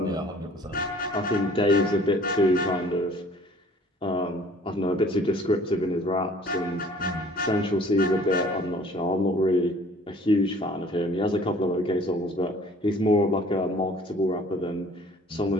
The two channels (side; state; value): both; normal; correlation 0.52